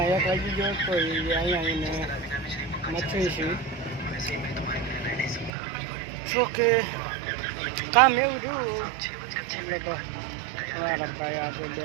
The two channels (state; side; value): drops out; left; at 5.5 s